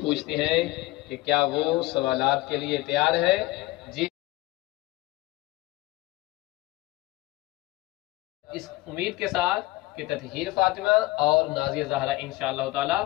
پوچھتے ہیں کہ کیا وہ سوالات کے لیے تیار ہے. جی، اس امید کے ساتھ کہ تطہیر فاطمہ اور نازیہ زہرا انشاءاللہ تعالی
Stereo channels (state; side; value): quieter; right; 19.8 dB